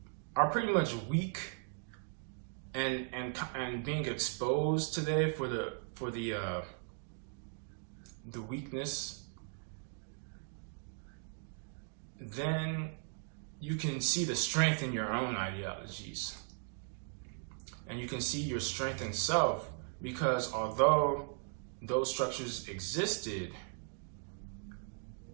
are pretty much weak and being exposed today for the weakness, then you can see the strength in your own ideologies. And you can see your strength in self, because although those structures existed,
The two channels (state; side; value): silent; left; 53 dB below the other